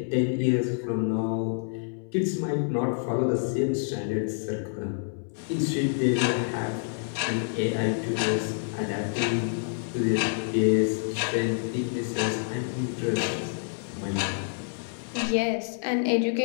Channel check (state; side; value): silent; right; 60 dB below the other